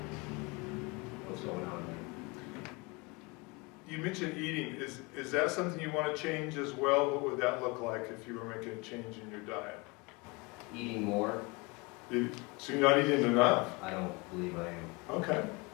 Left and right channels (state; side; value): quieter; right; 27.1 dB